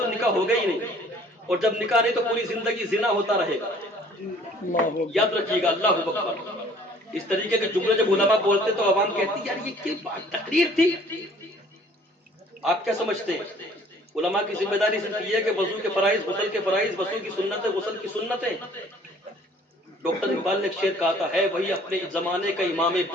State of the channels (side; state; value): both; normal; correlation 0.55